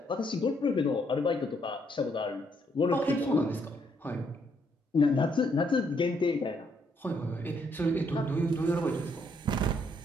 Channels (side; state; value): both; normal; correlation 0.72